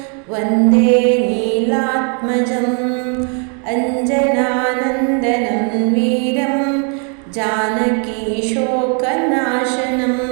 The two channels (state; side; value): quieter; left; 40.0 dB